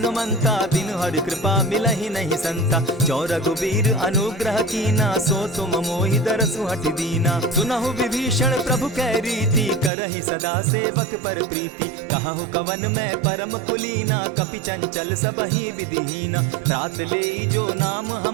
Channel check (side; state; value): left; drops out; at 9.9 s